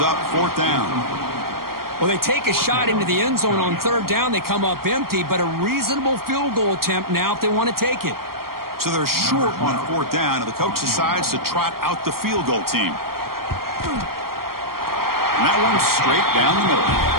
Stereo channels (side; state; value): left; late; 0.93 ms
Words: up 4th down. Well, they take a shot into the end zone on 3rd down. They come up empty, but a reasonable field goal attempt now if they want to take it. So they're short on 4th down, and the coach decides to trot out the field goal team. And that one's straight down the middle.